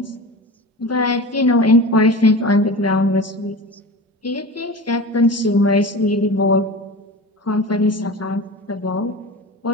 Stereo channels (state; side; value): normal; both; correlation 0.31